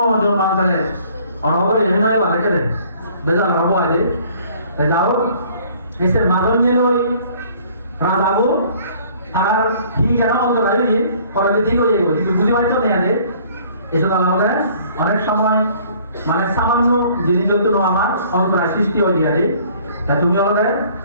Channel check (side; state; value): both; inverted; correlation -0.56